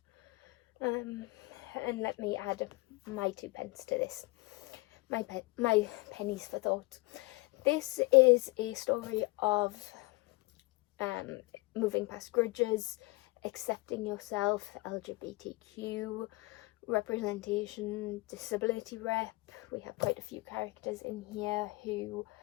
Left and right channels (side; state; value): right; quieter; 23.6 dB